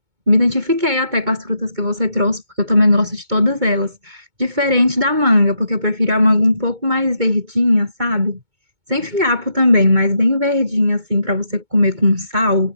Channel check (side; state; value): left; late; 2.2 ms